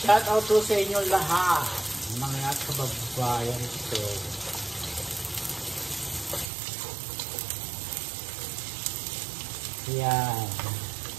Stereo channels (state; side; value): drops out; left; at 6.5 s